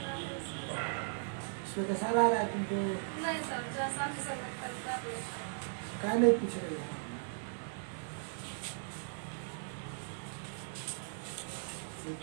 इसमें तो सारा आ रहा है तुमको, क्या नहीं पूछ रही है?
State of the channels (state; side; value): silent; left; 53 dB below the other